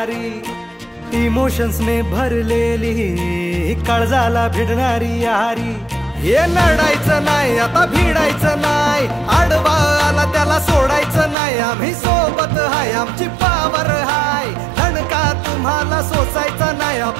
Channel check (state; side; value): drops out; left; at 11.4 s